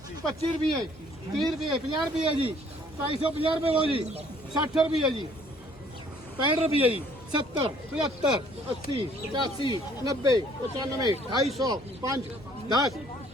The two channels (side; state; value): both; normal; correlation 0.59